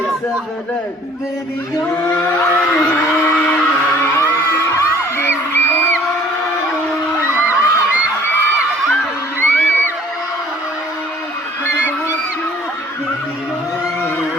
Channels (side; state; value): both; normal; correlation 0.54